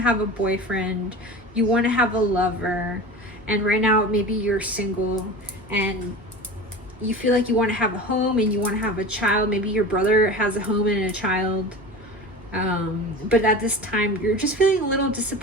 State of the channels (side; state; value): both; normal; correlation 0.32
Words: have a boyfriend, you want to have a lover, and right now maybe you're single, and you feel like you want to have a home and you want to have a child. Maybe your brother has a home and a child. But at this time, you're just feeling a little